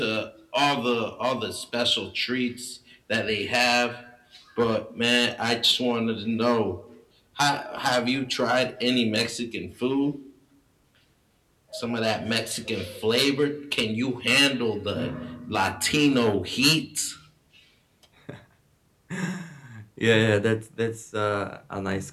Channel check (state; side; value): identical; both; correlation 1.00